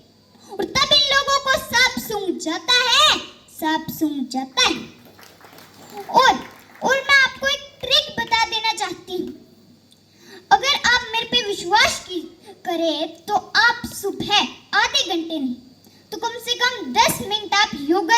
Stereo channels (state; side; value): identical; both; correlation 1.00